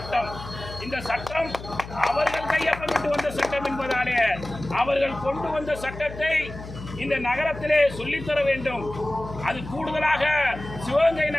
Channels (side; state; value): left; noise; hum, 12 dB below the sound